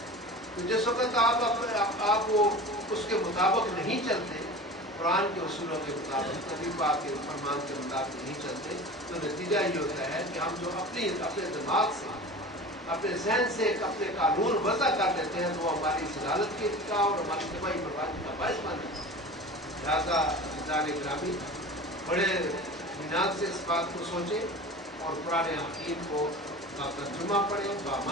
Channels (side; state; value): both; normal; correlation 0.35